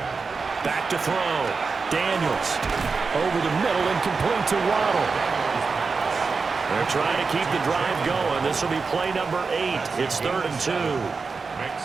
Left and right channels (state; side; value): quieter; left; 4.7 dB